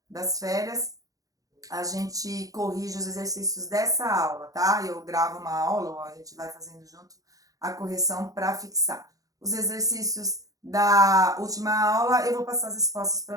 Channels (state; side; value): late; left; 0.17 ms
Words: das férias, a gente corrige os exercícios dessa aula, tá? Eu gravo uma aula, ou a gente vai fazendo junto a correção para fixar. Os exercícios da última aula, eu vou passar as respostas